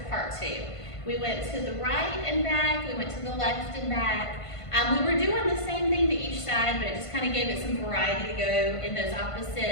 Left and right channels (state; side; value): late; right; 1.5 ms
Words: part 2. We went to the right and back, we went to the left and back. We were doing the same thing to each side, but it just kind of gave it some variety to go in those